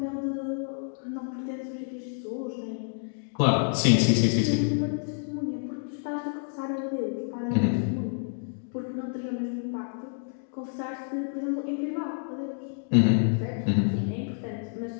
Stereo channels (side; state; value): right; silent; 59 dB below the other